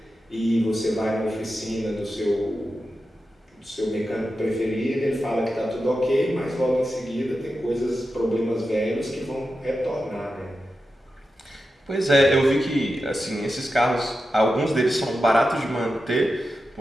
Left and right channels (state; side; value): normal; both; correlation 0.91